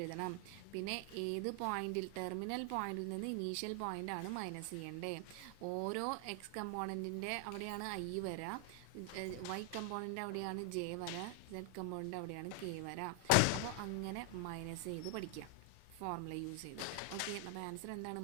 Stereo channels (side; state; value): both; different; correlation 0.00